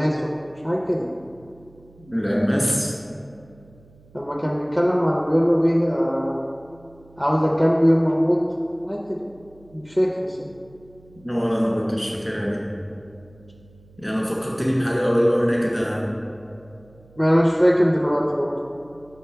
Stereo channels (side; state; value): right; noise; hum, 27 dB below the sound